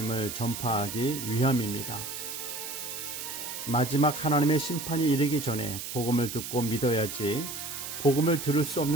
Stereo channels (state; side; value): noise; right; hiss, 7 dB below the sound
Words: 전파하기 위함입니다. 마지막 하나님의 심판이 이르기 전에 복음을 듣고 믿어야지 복음을 들을 수